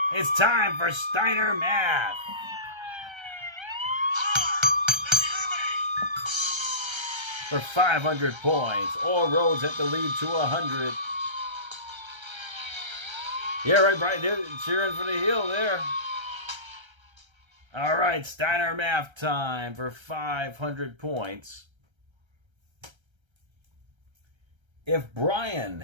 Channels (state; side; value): late; left; 1.3 ms